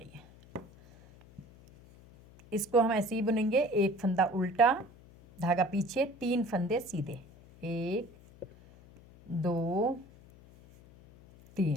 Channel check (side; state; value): left; noise; hum, 23 dB below the sound